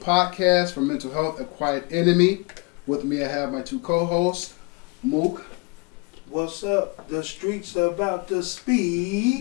for Mental Health, A Quiet Enemy. With me I have my two co-hosts, Mookie. What's up? The streets are about to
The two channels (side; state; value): right; quieter; 30.1 dB